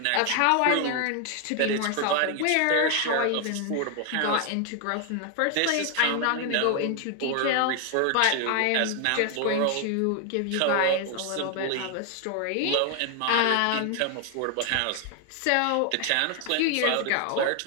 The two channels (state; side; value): different; both; correlation 0.00